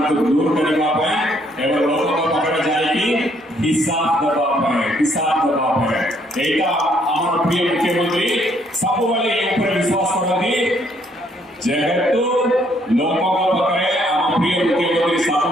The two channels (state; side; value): normal; both; correlation 0.68